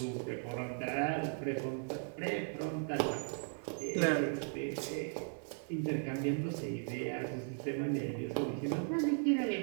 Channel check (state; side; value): silent; left; 53 dB below the other